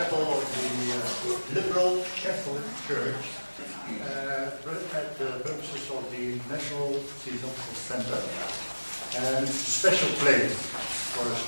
of the liberal Catholic Church at the purposes of the National Theosophical Center. And it's a special place for a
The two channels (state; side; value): inverted; both; correlation -1.00